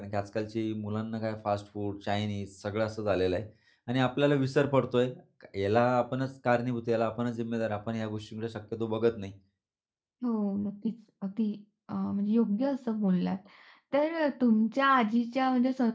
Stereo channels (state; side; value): identical; both; correlation 1.00